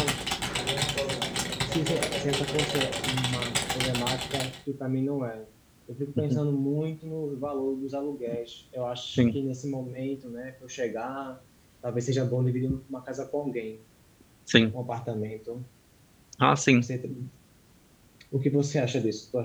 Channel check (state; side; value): identical; both; correlation 1.00